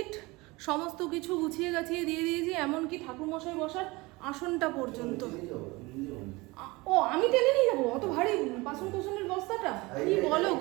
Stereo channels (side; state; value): left; quieter; 23.2 dB